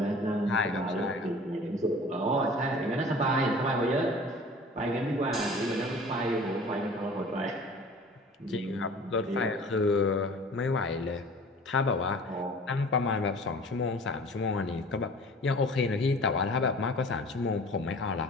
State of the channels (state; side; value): normal; both; correlation 0.44